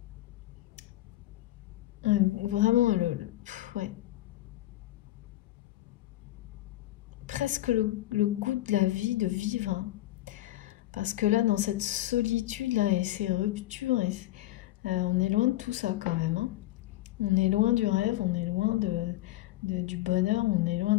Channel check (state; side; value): quieter; right; 16.0 dB